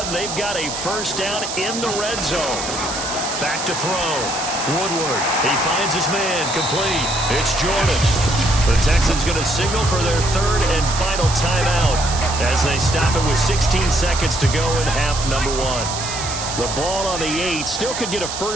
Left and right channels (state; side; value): noise; right; hiss, 6 dB below the sound